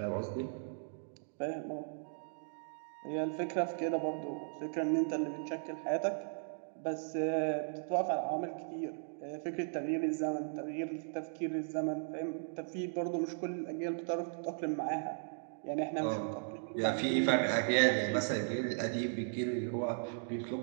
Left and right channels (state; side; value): silent; left; digital silence